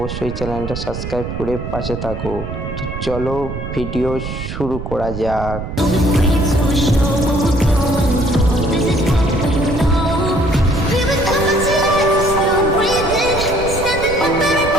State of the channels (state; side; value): noise; right; rumble, 7 dB below the sound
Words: চ্যানেলটা সাবস্ক্রাইব করে পাশে থাকো। তো চলো ভিডিও শুরু করা যাক।